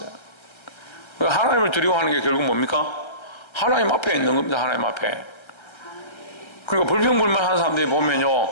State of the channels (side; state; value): right; late; 1.3 ms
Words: 하나님을 두려워하는 게 결국 뭡니까? 하나님 앞에 있는 겁니다. 하나님 앞에. 그러니까 불평불만하는 사람들이 보면요,